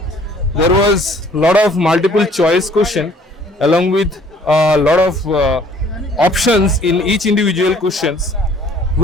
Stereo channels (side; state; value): both; normal; correlation 0.57